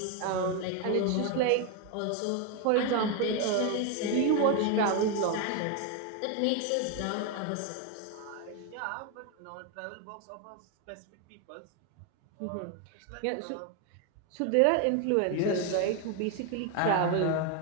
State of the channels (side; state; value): both; different; correlation 0.01